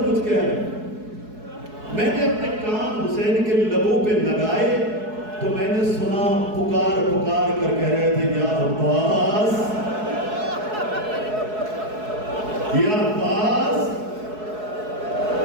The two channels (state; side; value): late; left; 4.7 ms